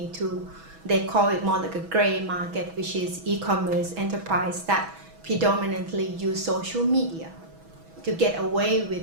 to, they call it more like a gray market, which is e-commerce enterprise that predominantly use social media to get away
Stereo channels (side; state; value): left; late; 6.1 ms